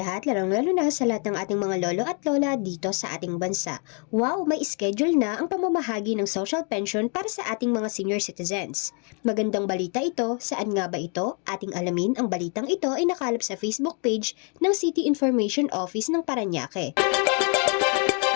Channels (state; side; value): quieter; right; 37.6 dB